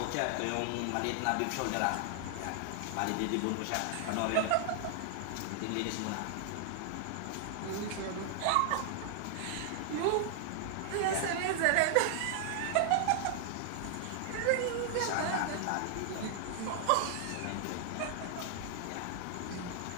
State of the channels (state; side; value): different; both; correlation 0.00